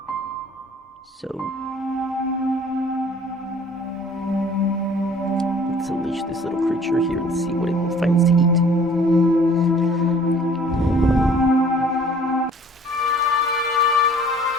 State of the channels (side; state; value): both; normal; correlation 0.53